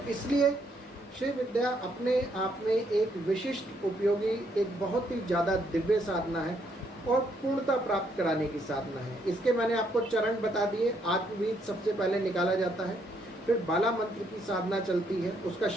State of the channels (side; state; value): both; normal; correlation 0.72